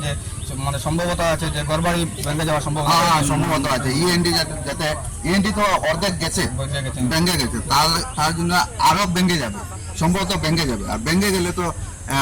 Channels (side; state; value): both; identical; correlation 1.00